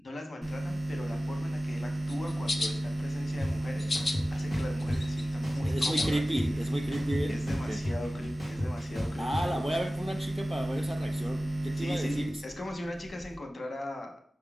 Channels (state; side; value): normal; both; correlation 0.96